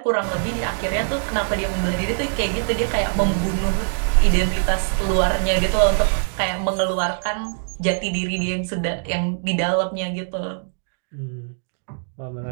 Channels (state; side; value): silent; left; digital silence